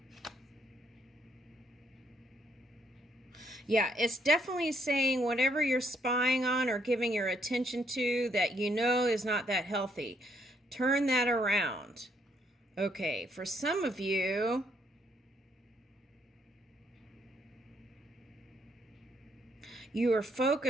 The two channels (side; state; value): both; normal; correlation 0.71